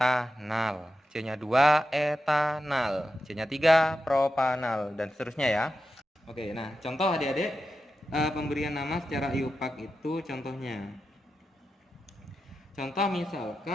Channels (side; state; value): both; normal; correlation 0.90